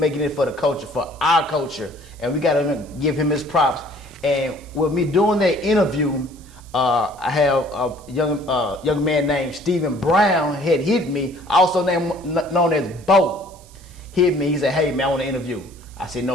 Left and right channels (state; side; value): noise; right; hiss, 25 dB below the sound